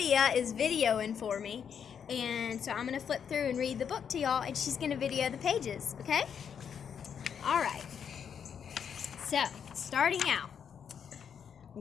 is videoing for me. And so I'm going to flip through and read the book to y'all, and she's going to video the pages, okay? All right. So, starting out.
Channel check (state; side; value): quieter; right; 7.6 dB